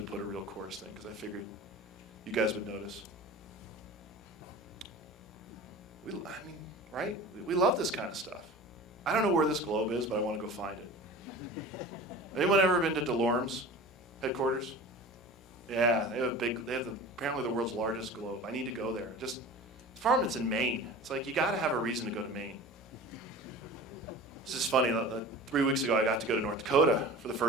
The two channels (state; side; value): normal; both; correlation 0.37